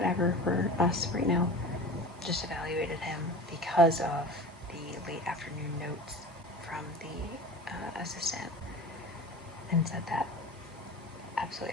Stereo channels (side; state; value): both; normal; correlation 0.36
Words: for us right now, just evaluated him because of the late afternoon notes from the assistant, and said that